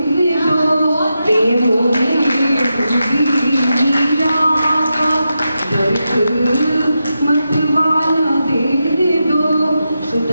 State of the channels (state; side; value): inverted; both; correlation -0.88